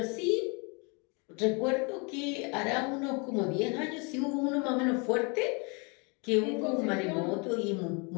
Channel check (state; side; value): quieter; right; 32.2 dB